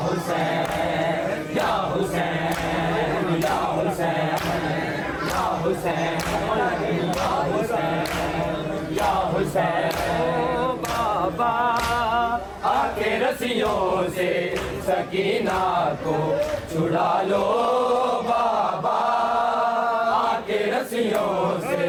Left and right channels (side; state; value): both; identical; correlation 1.00